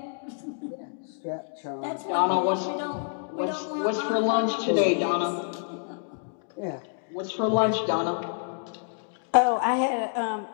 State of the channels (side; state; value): right; silent; 58 dB below the other